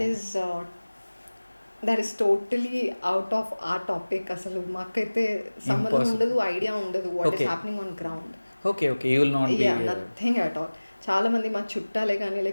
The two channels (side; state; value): both; inverted; correlation -1.00